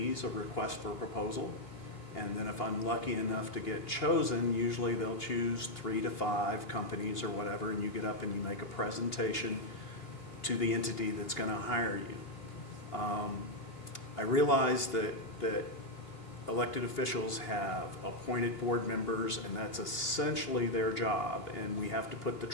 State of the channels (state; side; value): late; right; 2.8 ms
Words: a request for a proposal. And then if I'm lucky enough to get chosen, usually they'll choose 3 to 5 companies or whatever, and you get up and you make a presentation to the entity that's going to hire you. I realize that elected officials have appointed board members, and that's essentially their job, and we have to put the